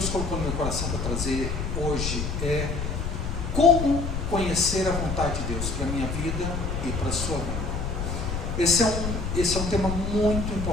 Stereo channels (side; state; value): left; noise; rumble, 3 dB below the sound